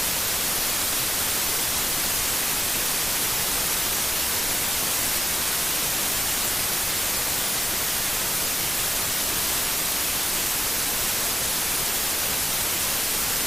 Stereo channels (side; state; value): both; normal; correlation 0.93